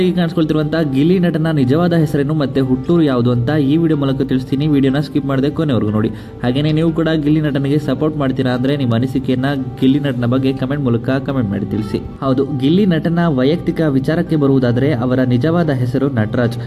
ಕಾಣಿಸ್ಕೊಳ್ತಿರುವಂತಹ ಗಿಲ್ಲಿ ನಟನ ನಿಜವಾದ ಹೆಸರೇನು ಮತ್ತೆ ಹುಟ್ಟೂರು ಯಾವುದು ಅಂತ ಈ ವಿಡಿಯೋ ಮೂಲಕ ತಿಳಿಸ್ತೀನಿ. ವಿಡಿಯೋನ ಸ್ಕಿಪ್ ಮಾಡದೆ ಕೊನೆವರೆಗೂ ನೋಡಿ. ಹಾಗೇನೇ ನೀವು ಕೂಡ ಗಿಲ್ಲಿ ನಟನಿಗೆ ಸಪೋರ್ಟ್ ಮಾಡ್ತೀರಾ ಅಂದ್ರೆ ನಿಮ್ಮ ಅನಿಸಿಕೆಯನ್ನ ಗಿಲ್ಲಿ ನಟನ ಬಗ್ಗೆ ಕಮೆಂಟ್ ಮೂಲಕ ಕಮೆಂಟ್ ಮಾಡಿ ತಿಳಿಸಿ. ಹೌದು, ಗಿಲ್ಲಿ ನಟನ ವೈಯಕ್ತಿಕ ವಿಚಾರಕ್ಕೆ ಬರುವುದಾದರೆ ಅವರ ನಿಜವಾದ ಹೆಸರು ನಟರಾಜ್.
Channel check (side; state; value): both; identical; correlation 1.00